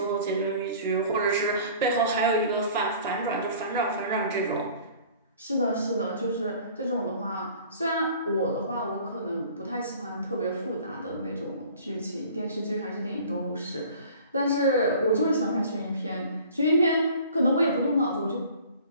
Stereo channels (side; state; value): both; inverted; correlation -0.48